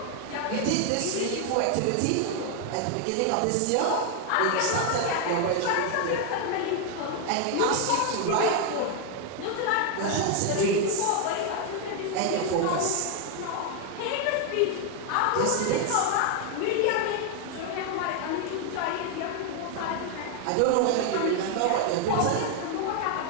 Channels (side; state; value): both; different; correlation 0.01